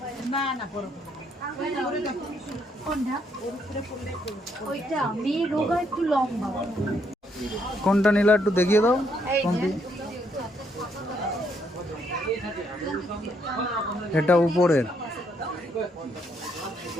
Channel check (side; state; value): both; normal; correlation 0.73